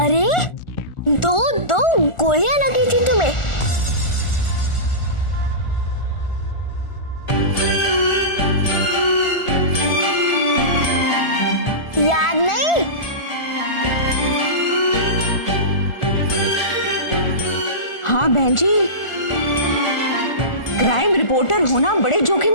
दो गोलियां लगी थी तुम्हें। याद नहीं? हाँ बहन जी, क्राइम रिपोर्टर होना बड़े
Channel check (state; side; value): late; right; 1.4 ms